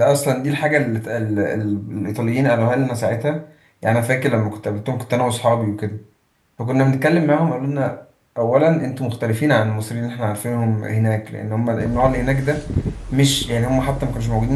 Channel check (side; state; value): both; identical; correlation 1.00